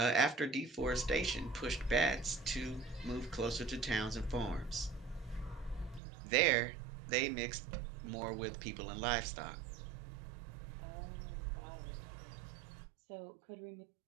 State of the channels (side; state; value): left; drops out; at 6.0 s